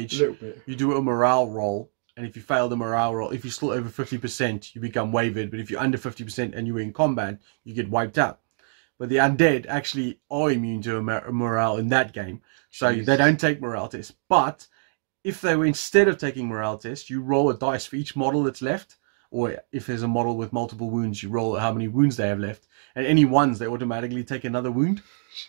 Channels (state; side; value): silent; left; digital silence